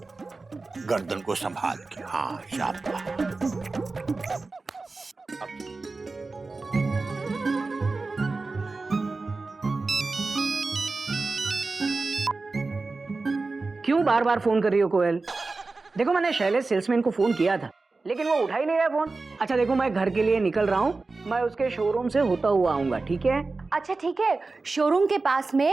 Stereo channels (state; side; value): quieter; left; 3.7 dB